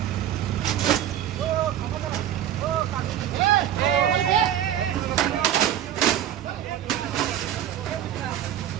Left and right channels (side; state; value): left; quieter; 10.9 dB